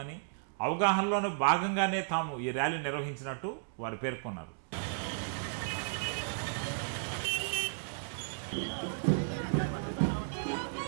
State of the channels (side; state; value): left; silent; digital silence